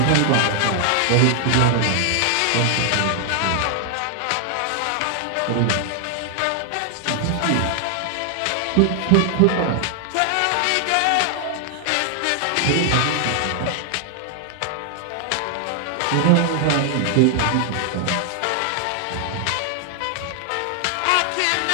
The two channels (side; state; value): both; different; correlation 0.00